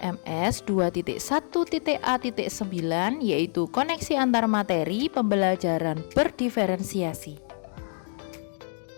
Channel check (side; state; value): right; silent; digital silence